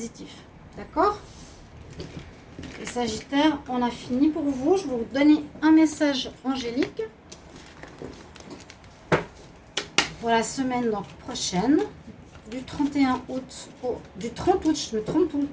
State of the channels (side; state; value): both; identical; correlation 1.00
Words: D'accord? Les Sagittaires, on a fini pour vous. Je vais vous donner un message angélique pour la semaine donc, prochaine. Du 31 août du 30 août, je me trompe tout le